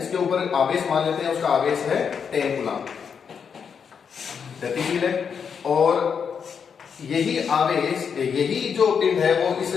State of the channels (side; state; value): right; quieter; 6.7 dB